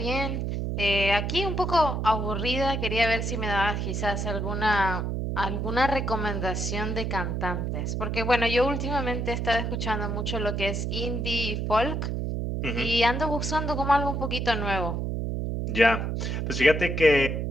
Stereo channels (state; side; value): noise; right; hum, 1 dB below the sound